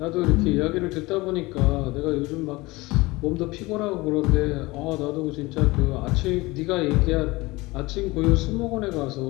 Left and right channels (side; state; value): right; quieter; 21.8 dB